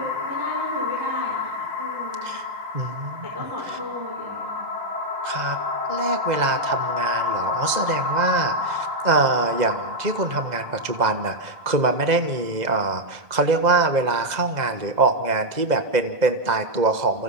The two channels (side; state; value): left; late; 2.0 ms